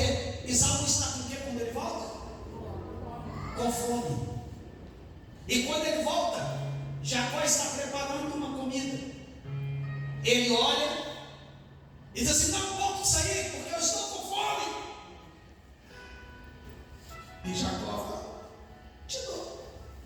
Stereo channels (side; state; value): both; identical; correlation 1.00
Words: Esaú está com o quê quando ele volta? Com fome. E quando ele volta, Jacó está preparando uma comida. Ele olha e diz assim: não posso sair porque eu estou com fome. E Jacó fala: te dou,